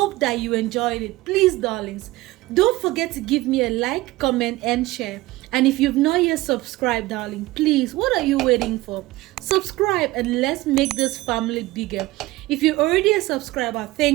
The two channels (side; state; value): left; quieter; 19.1 dB